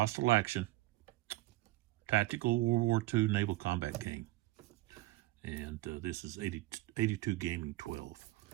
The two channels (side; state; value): left; quieter; 18.1 dB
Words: Action, Tactical World War II Naval Combat Game. And this is 82 Gaming 12.